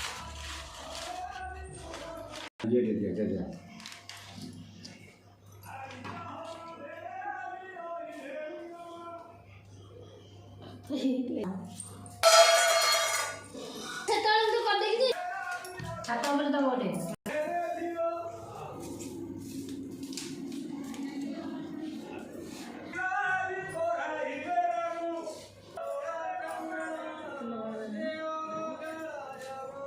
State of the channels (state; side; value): identical; both; correlation 1.00